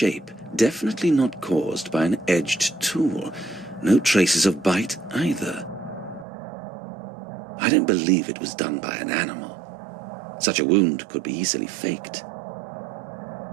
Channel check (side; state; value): left; drops out; at 6.2 s